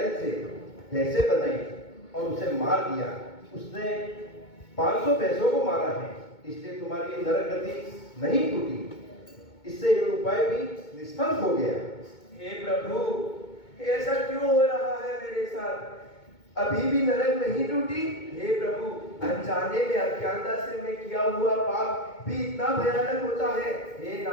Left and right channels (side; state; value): right; late; 2.2 ms